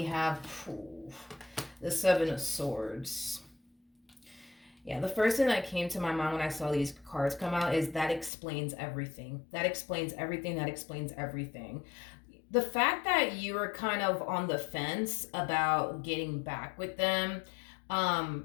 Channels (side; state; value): right; drops out; at 8.3 s